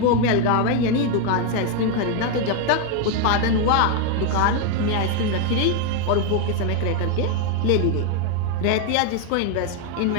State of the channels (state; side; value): different; both; correlation 0.01